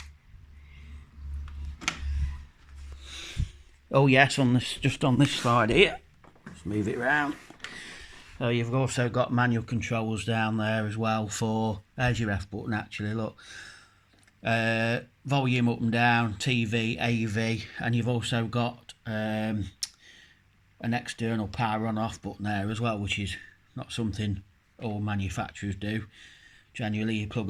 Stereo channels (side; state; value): both; identical; correlation 1.00